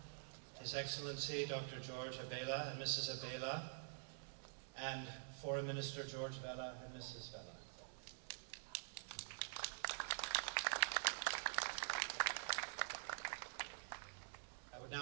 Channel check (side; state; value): left; silent; digital silence